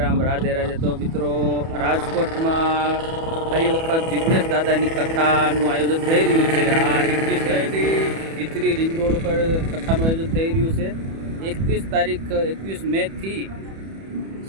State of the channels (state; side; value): late; left; 31 ms